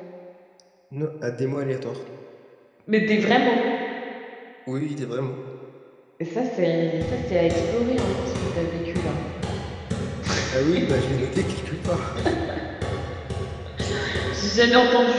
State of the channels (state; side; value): identical; both; correlation 1.00